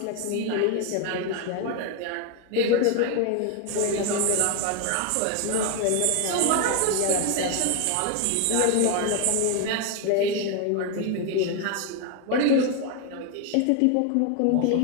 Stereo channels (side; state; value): both; different; correlation 0.01